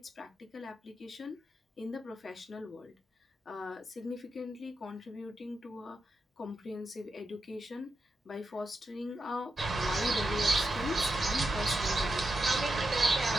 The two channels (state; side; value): normal; both; correlation 0.86